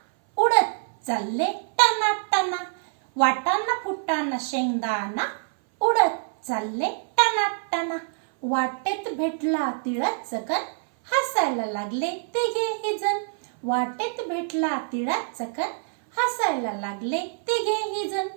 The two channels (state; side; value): silent; left; 60 dB below the other